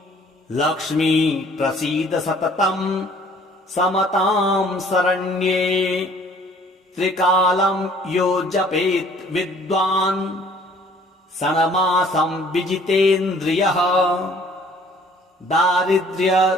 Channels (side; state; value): both; normal; correlation 0.56